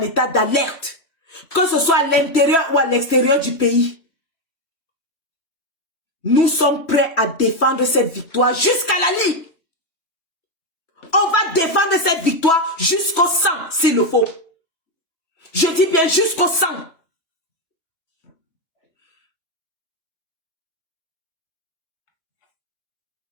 état d'alerte. Que ce soit à l'intérieur ou à l'extérieur du pays. Nous sommes prêts à défendre cette victoire jusqu'à la lie. On va défendre cette victoire jusqu'au sang, s'il le faut. Je dis bien jusqu'au sang.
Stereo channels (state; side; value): late; right; 3.1 ms